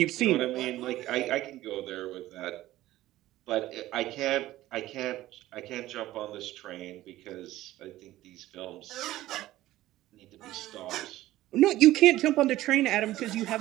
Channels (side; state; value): left; quieter; 15.6 dB